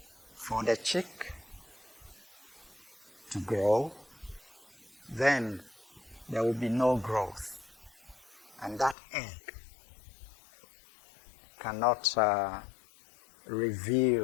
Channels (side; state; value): right; drops out; at 9.0 s